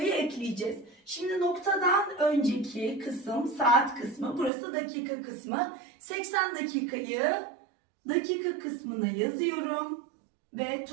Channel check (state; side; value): drops out; left; at 4.5 s